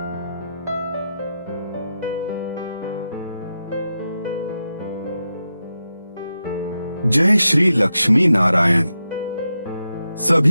श्री लक्ष्मी नारायण।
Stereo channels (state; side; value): inverted; both; correlation -0.88